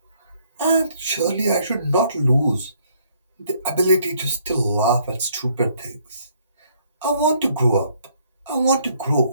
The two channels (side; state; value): both; inverted; correlation -0.65